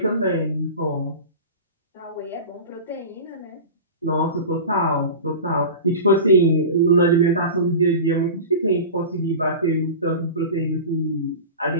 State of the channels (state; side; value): inverted; both; correlation -0.32